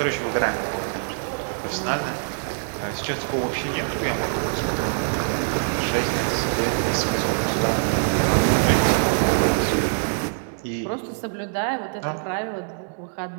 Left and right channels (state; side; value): silent; left; digital silence